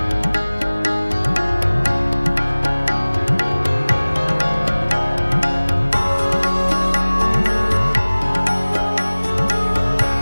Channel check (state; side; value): inverted; both; correlation -1.00